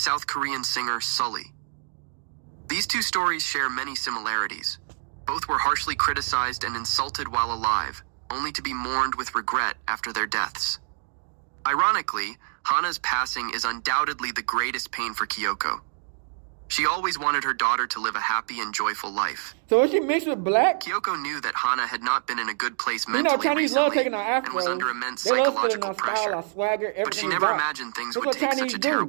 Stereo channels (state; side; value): silent; left; digital silence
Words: Korean singer Sully. These two stories share many similarities. Both were harshly criticized and insulted while alive, only to be mourned with regret after their deaths. Ironically, Hana's passing is undoubtedly the greatest pain for Kyoko. She always wanted her daughter to live a happy and joyful life. So is she mixed with black? Kyoko knew that Hana had not been in a good place You mentally know, Chinese recently love taking our and afros. was under immense They love feeling psychological our style, pressure. our swagger, everything. But she we never got. imagined things That's would what take Chinese such a do.